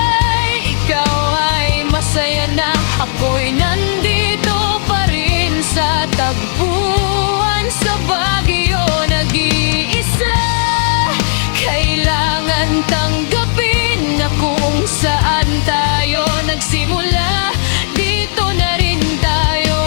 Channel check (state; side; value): silent; right; digital silence